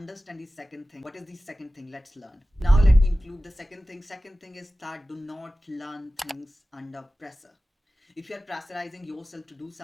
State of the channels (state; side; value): normal; both; correlation 0.96